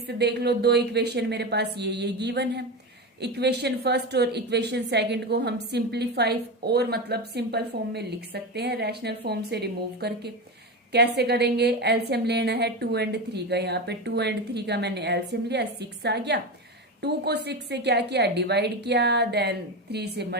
देख लो, दो इक्वेशन मेरे पास ये गिवन है। इक्वेशन फर्स्ट और इक्वेशन सेकंड को हम सिंप्लीफाई और मतलब सिंपल फॉर्म में लिख सकते हैं, रैशनल फॉर्म से रिमूव करके। कैसे करेंगे? एलसीएम लेना है 2 और 3 का। यहाँ पे 2 और 3 का मैंने एलसीएम लिया, 6 आ गया। 2 को 6 से क्या किया? डिवाइड किया, देन 3 से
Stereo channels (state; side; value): normal; both; correlation 0.19